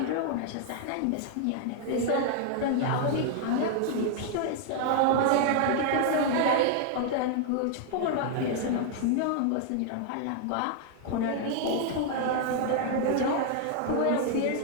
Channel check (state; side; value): different; both; correlation 0.00